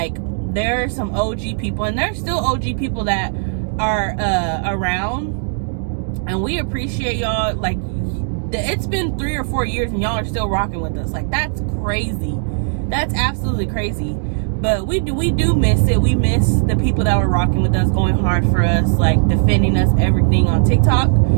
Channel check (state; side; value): silent; left; digital silence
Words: there are some OG people, and there's still OG people that are around, and we appreciate y'all. Like, it's been 3 or 4 years and y'all are still rocking with us. Like, that's crazy. That's absolutely crazy. But we do miss it. We miss the people that were rocking with us, going hard for us, like defending us, everything on TikTok.